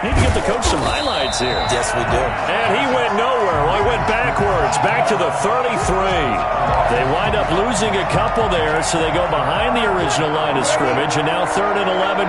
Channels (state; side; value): identical; both; correlation 1.00